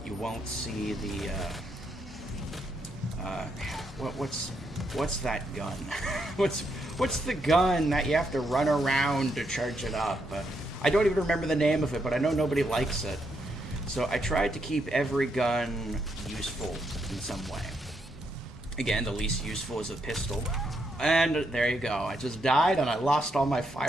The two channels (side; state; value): both; normal; correlation 0.78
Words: You won't see the what's that gun? what's the gun that you have to run around to charge it up? I don't even remember the name of it, but I know nobody likes it. So I tried to keep every gun useful in some way. Again, the least useful is a pistol. And there you go. I just died and I lost all my